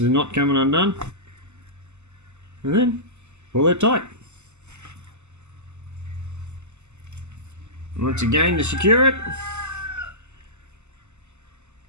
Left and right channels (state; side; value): late; left; 0.83 ms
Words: knot coming undone. And then pull it tight. Once again, to secure it,